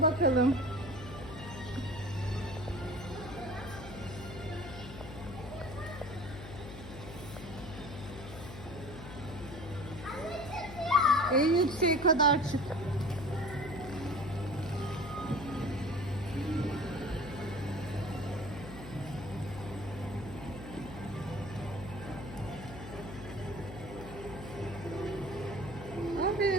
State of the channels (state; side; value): noise; left; hum, 11 dB below the sound